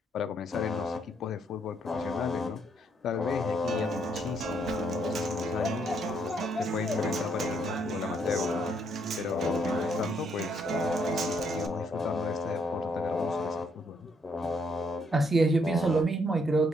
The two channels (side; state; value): both; normal; correlation 0.72